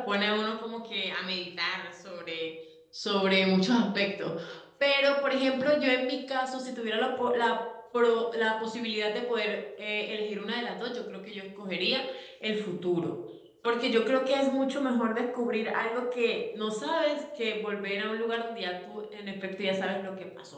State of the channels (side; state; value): both; identical; correlation 1.00